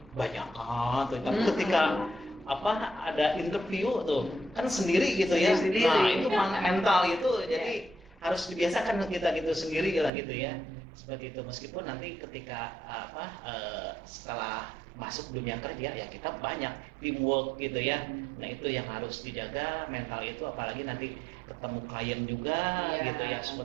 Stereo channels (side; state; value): left; drops out; at 10.1 s